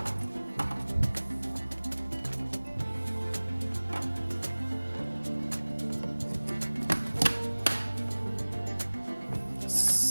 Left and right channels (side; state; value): both; inverted; correlation -1.00